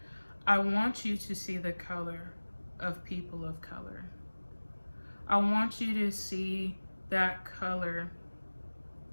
I want you to see the color of people of color. I want you to see that color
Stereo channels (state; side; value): inverted; both; correlation -1.00